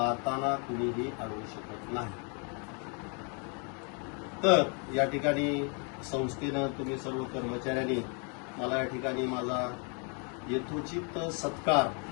कुणीही अडवू शकत नाही. तर या ठिकाणी संस्थेनं तुम्ही सर्व कर्मचाऱ्यांनी मला या ठिकाणी माझा यथोचित सत्कार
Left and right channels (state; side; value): quieter; right; 36.7 dB